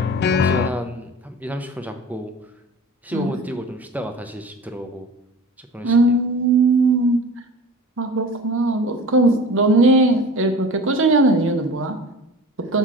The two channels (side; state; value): both; normal; correlation 0.38